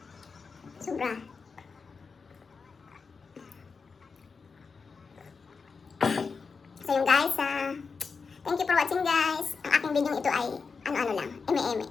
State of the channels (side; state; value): right; quieter; 5.0 dB